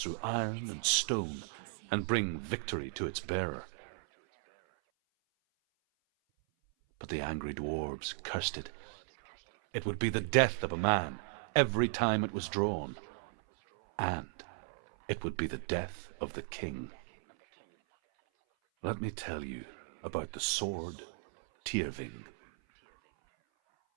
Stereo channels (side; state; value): left; silent; 54 dB below the other